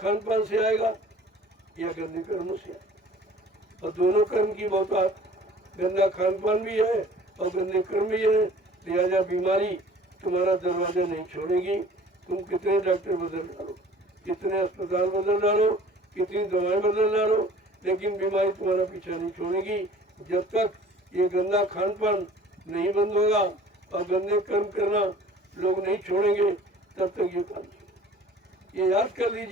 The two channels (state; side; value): normal; both; correlation 0.48